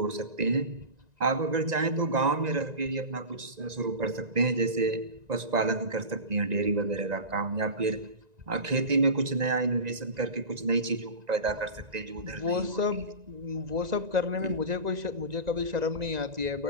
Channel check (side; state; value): left; late; 1.9 ms